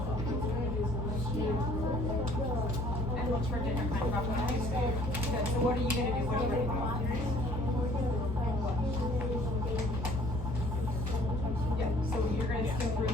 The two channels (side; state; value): both; normal; correlation 0.56